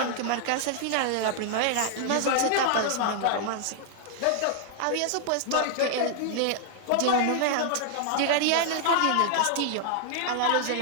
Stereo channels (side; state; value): both; different; correlation 0.00